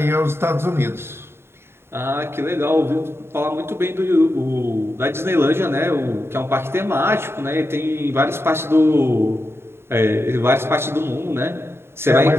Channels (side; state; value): left; late; 0.12 ms